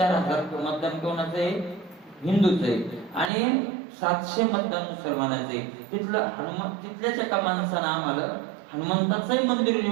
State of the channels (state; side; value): drops out; left; at 3.3 s